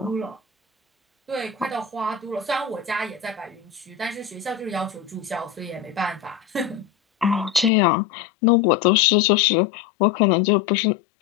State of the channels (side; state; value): right; drops out; at 7.7 s